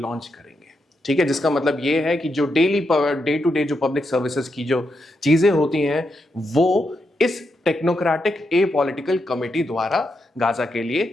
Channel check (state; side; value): normal; both; correlation 0.83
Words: करेंगे। ठीक है, जिसका मतलब ये है कि जो डे टू डे जो पब्लिक सर्विसेज की जो चीजें होती हैं वो इस टेक्नोक्रेटिक ए पॉलिटिकल कमेटी द्वारा गाजा के